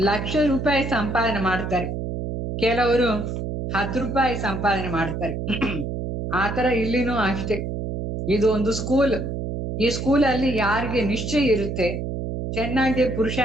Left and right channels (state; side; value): noise; right; hum, 4 dB below the sound